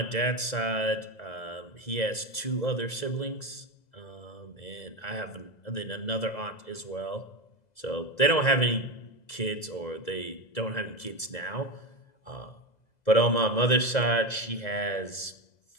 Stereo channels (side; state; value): right; late; 2.0 ms